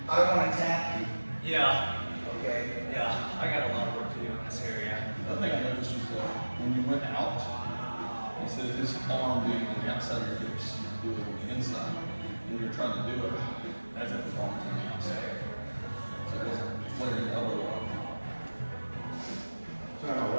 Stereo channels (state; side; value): inverted; both; correlation -1.00